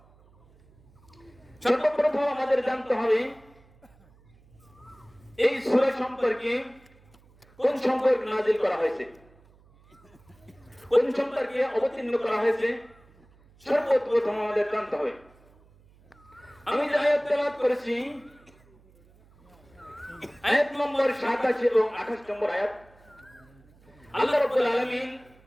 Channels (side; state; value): right; noise; hum, 28 dB below the sound